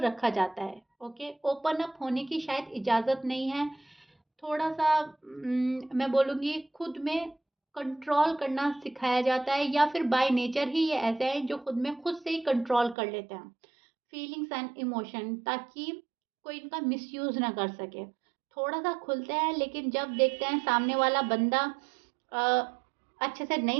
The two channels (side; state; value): left; drops out; at 13.0 s